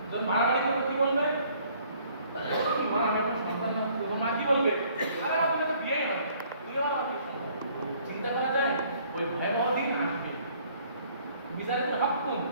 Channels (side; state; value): both; inverted; correlation -0.60